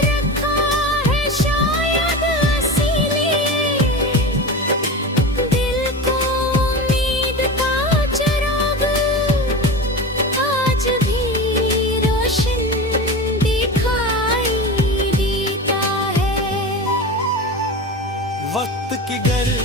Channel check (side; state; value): both; normal; correlation 0.27